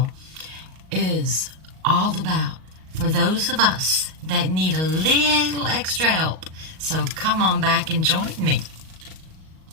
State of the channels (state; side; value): late; left; 38 ms